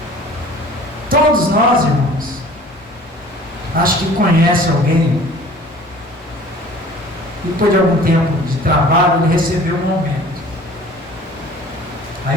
Todos nós, irmãos, acho que conhece alguém e depois de algum tempo de trabalho ele recebeu um aumento.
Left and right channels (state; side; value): normal; both; correlation 0.47